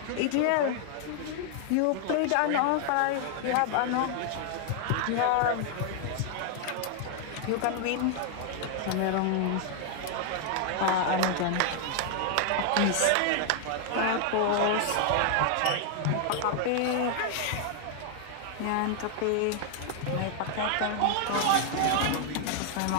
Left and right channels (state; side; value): different; both; correlation 0.00